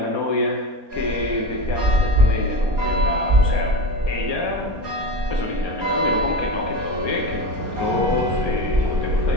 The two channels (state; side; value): late; left; 4.3 ms